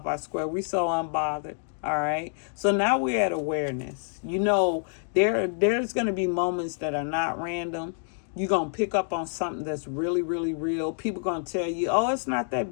our square. We're so unbothered. All right. So now we're at awareness. You know, there's going to be moments that are not random. You're going to pick up on something that's really, really real. People going to tell you, oh, it's not that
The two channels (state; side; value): silent; right; digital silence